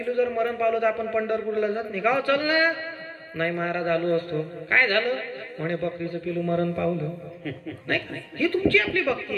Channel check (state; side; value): identical; both; correlation 1.00